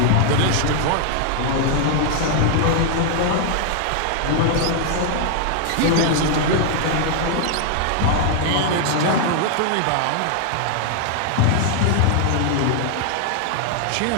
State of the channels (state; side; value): different; both; correlation 0.00